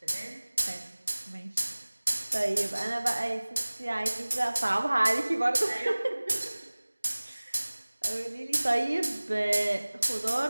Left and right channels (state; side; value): inverted; both; correlation -1.00